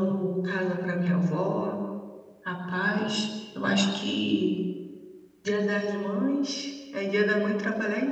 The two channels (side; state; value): both; identical; correlation 1.00